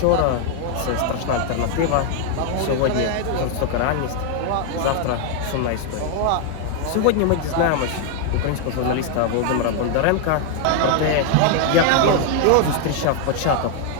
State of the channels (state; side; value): different; both; correlation 0.00